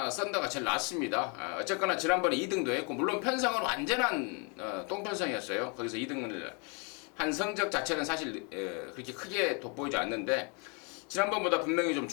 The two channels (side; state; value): right; quieter; 34.2 dB